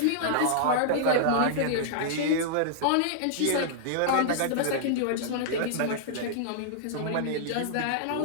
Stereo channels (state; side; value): different; both; correlation -0.02